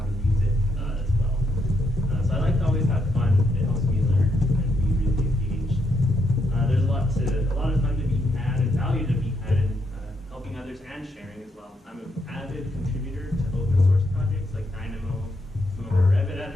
to use it as well. So I like to always have fun. It helps me learn and be really engaged. There's a lot of fun to be had and value to be had in helping others and sharing as well. I'm an avid contributor to open source projects like Dynamo. Some of our Revit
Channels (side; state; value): both; normal; correlation 0.78